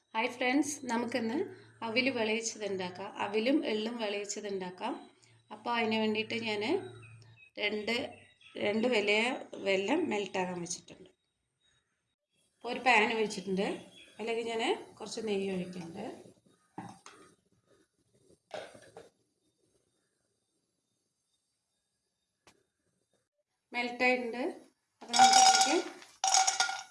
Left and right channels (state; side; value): identical; both; correlation 1.00